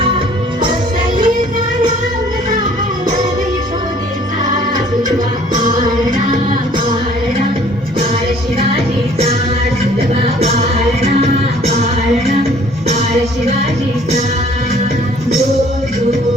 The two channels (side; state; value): both; normal; correlation 0.56